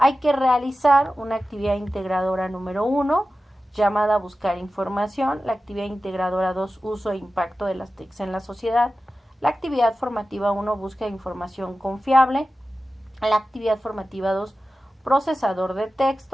que realizar una actividad integradora número 1, llamada Buscar Información, la actividad integradora 2, Uso e Impacto de las TICs en la sociedad, la actividad formativa 1, Busca información confiable, la actividad formativa 2, Procesador de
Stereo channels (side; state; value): both; normal; correlation 0.94